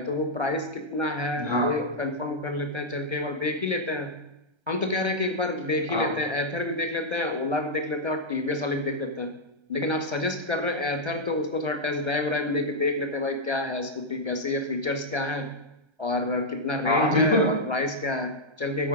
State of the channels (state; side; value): late; left; 1.3 ms